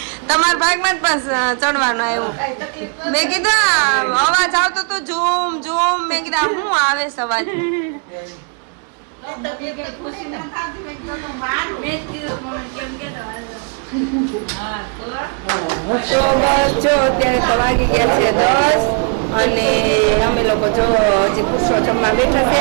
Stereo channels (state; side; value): quieter; left; 37.5 dB